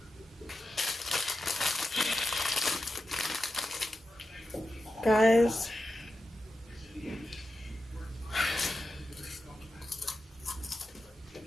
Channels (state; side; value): normal; both; correlation 0.90